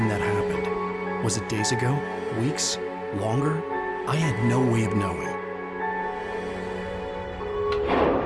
that happened. Was it days ago? Weeks? Longer? I had no way of knowing.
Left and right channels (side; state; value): both; identical; correlation 1.00